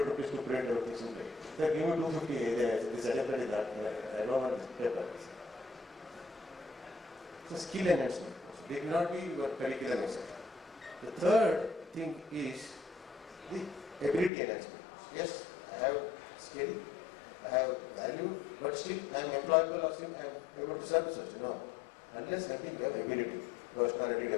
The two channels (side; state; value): right; drops out; at 14.3 s